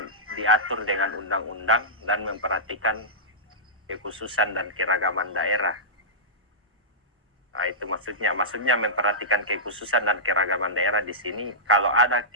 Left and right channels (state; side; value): normal; both; correlation -0.16